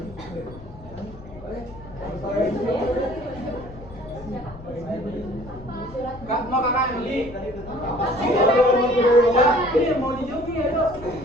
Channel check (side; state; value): left; noise; rumble, 17 dB below the sound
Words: Kak, mau kakak Yuli? Ini mau dijumpi ya, Dok.